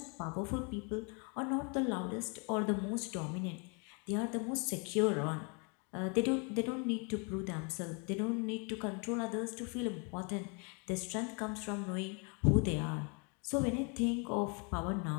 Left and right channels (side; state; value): right; quieter; 35.0 dB